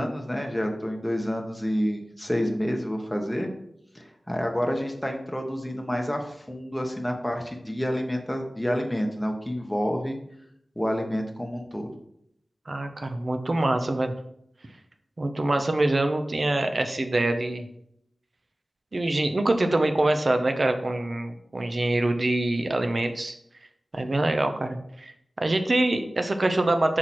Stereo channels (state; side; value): normal; both; correlation 0.97